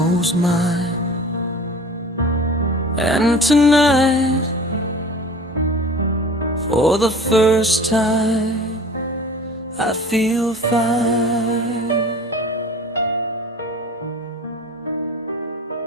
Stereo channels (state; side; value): normal; both; correlation 0.42